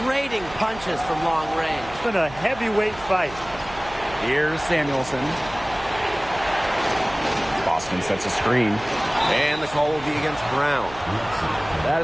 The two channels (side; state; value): right; noise; hum, 17 dB below the sound